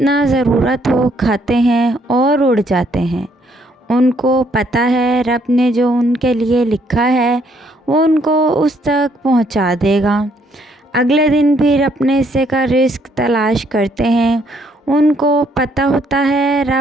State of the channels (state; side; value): normal; both; correlation 0.68